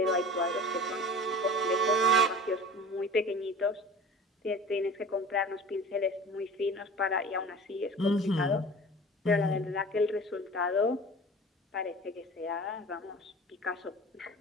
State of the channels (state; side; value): normal; both; correlation 0.39